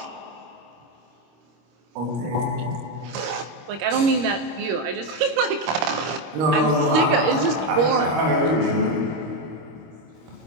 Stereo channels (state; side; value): late; left; 25 ms